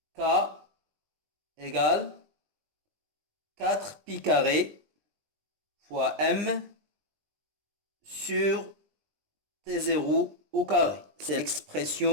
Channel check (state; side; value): late; left; 20 ms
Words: k égale 4pi carré fois m sur t0 au carré. C'est